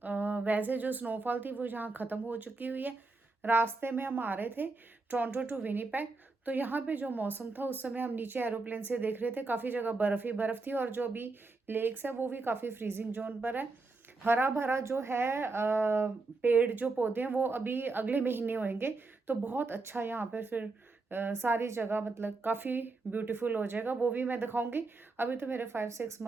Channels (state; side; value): quieter; left; 3.6 dB